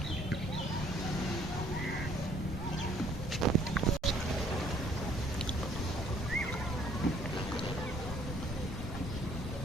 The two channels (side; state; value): both; normal; correlation 0.61